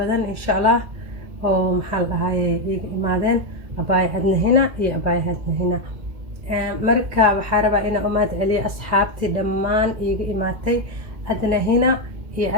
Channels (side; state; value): left; late; 2.2 ms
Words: إن شاء الله أو محل هاي إمادين أباي هدنا هنا يا أباي هدنا هنا marka waxaa rabaa inaan u mahad celiyo asxaabtii dhammaan iiga imaatay adna hina iyo